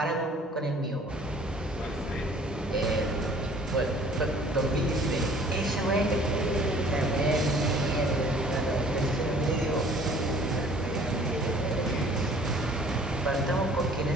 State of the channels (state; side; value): normal; both; correlation 0.54